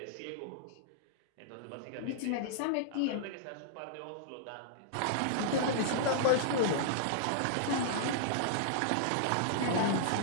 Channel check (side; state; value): both; different; correlation -0.02